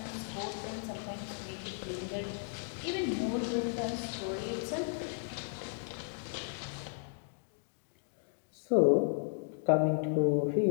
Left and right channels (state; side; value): silent; right; digital silence